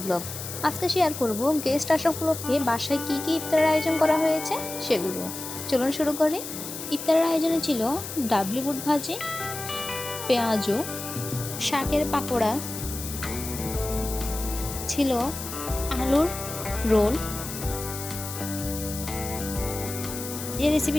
blog. আজকে share করব গেস্ট আসা উপলক্ষে বাসায় কী কী ইফতারের আয়োজন করা হয়েছে সেগুলো। চলুন শুরু করি। ইফতারের আয়োজনে ছিল ডাবলি বুট ভাজি, পেঁয়াজু, শাকের পাকোড়া, ছিল আলুর রোল। এই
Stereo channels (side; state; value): left; noise; hiss, 8 dB below the sound